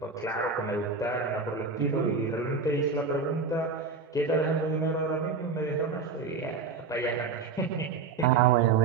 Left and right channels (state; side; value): quieter; left; 4.8 dB